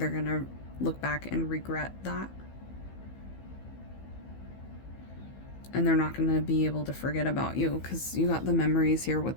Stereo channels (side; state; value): right; late; 15 ms